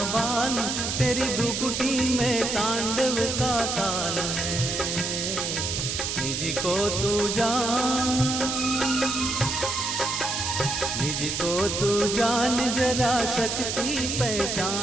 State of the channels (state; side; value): noise; right; hiss, 2 dB below the sound